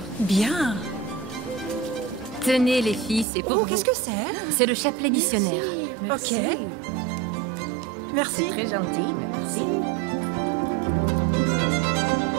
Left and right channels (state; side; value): drops out; left; at 3.2 s